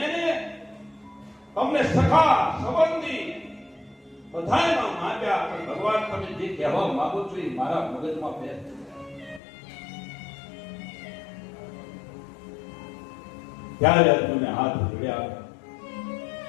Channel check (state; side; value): drops out; right; at 9.4 s